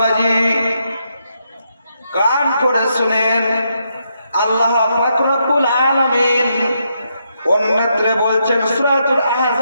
কান করে শুনেন, আল্লাহ পাক রব্বুল আলামিন অন্যত্র বলছেন, সূরাতুল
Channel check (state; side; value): inverted; both; correlation -0.79